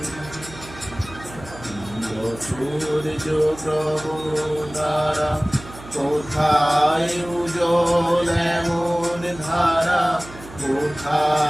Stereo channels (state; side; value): noise; right; hum, 17 dB below the sound